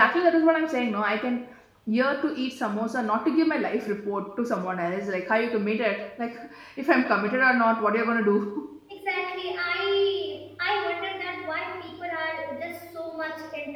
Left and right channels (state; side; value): identical; both; correlation 1.00